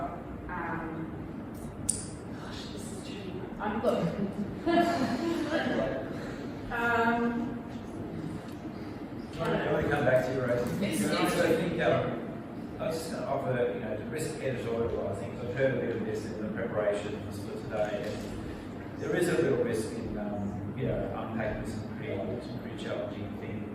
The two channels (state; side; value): identical; both; correlation 1.00